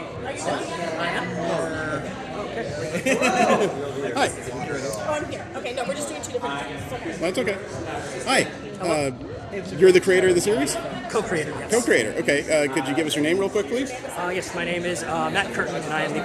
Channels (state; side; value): identical; both; correlation 1.00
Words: you done? I am? Okay. Hi. Oh, I'm here. Okay, no, we're just doing 2 different things. Okay. That's okay. Hi. You're the creator of the series? Co-creator, yes. Co-creator. Okay. Could you give us your name real quick, please? Yes, my name is Matt Curtin, and I am the